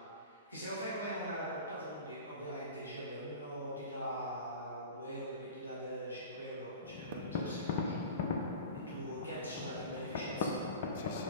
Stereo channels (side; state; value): both; inverted; correlation -0.35